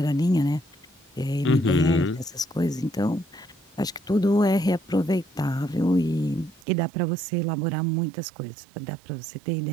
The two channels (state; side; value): drops out; left; at 6.6 s